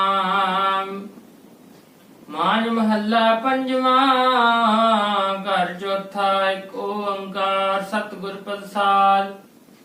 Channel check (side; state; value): both; identical; correlation 1.00